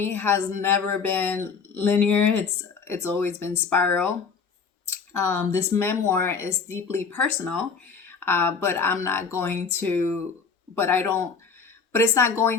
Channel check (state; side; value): quieter; right; 5.4 dB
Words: has never been linear. It's always been spiral. This memoir is deeply personal, but I'm not going to, but I don't, but it's not